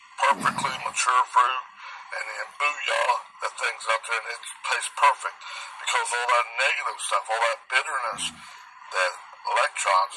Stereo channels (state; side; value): identical; both; correlation 1.00